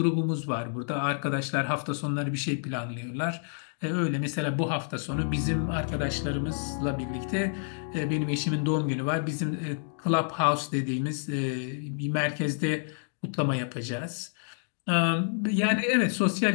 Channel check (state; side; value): silent; right; digital silence